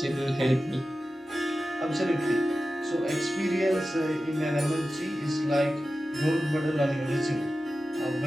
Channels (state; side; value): normal; both; correlation 0.94